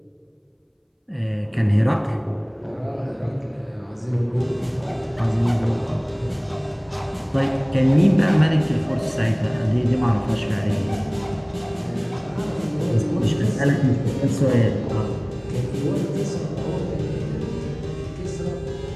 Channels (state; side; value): identical; both; correlation 1.00